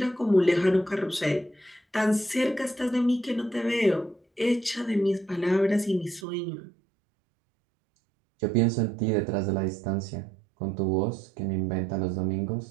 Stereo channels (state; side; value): drops out; left; at 6.2 s